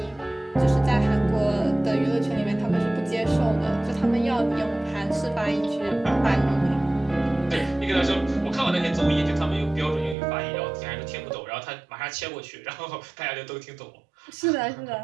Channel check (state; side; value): drops out; left; at 10.2 s